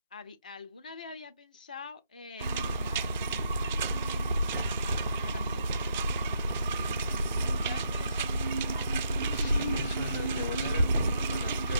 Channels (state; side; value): inverted; both; correlation -0.75